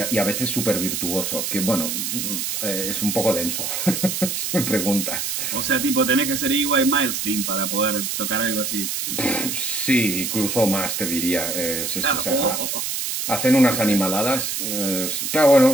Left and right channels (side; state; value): right; noise; hiss, 2 dB below the sound